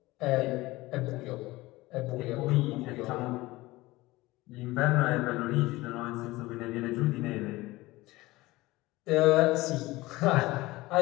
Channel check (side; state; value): right; quieter; 19.7 dB